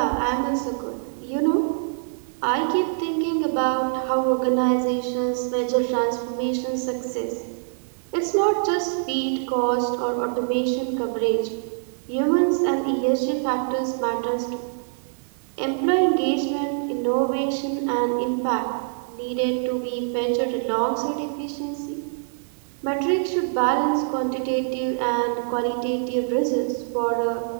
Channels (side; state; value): left; silent; 60 dB below the other